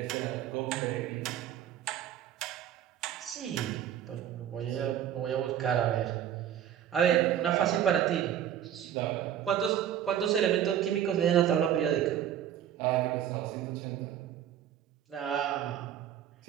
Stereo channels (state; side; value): quieter; left; 10.4 dB